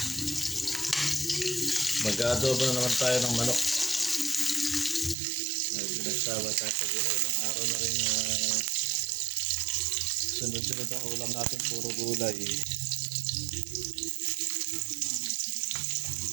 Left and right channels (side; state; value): left; drops out; at 5.2 s